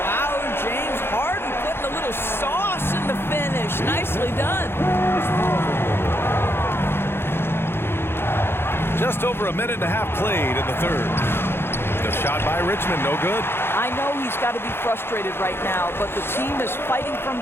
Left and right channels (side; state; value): right; late; 0.11 ms